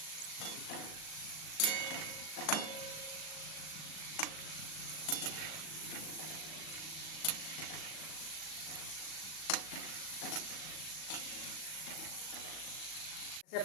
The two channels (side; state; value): right; late; 38 ms